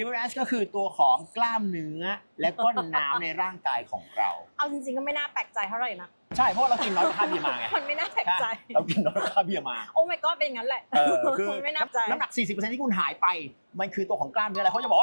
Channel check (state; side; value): inverted; both; correlation -1.00